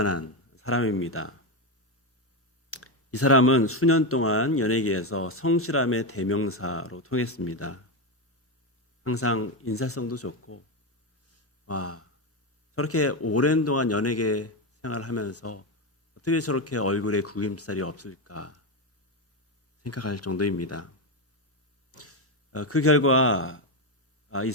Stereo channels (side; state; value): both; normal; correlation 0.11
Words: 사람입니다. 이 사람은 수년 동안 연예계에서 성실함의 대명사로 통했습니다. 항상 인사성도 좋고, 저렇게 오랜 동안 연예계 생활을 하면서 어떻게 저렇게 얼굴에 구김살이 없을까 생각할 정도입니다. 그 결과 이